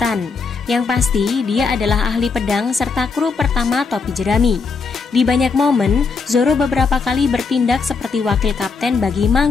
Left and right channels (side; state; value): right; quieter; 4.9 dB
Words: Yang pasti, dia adalah ahli pedang serta kru pertama topi jerami. Di banyak momen, Zoro beberapa kali bertindak seperti wakil kapten bagi